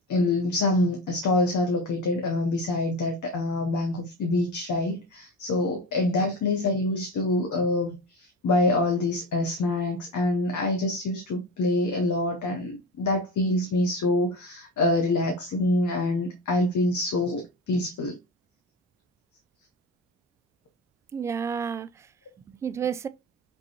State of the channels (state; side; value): normal; both; correlation 0.27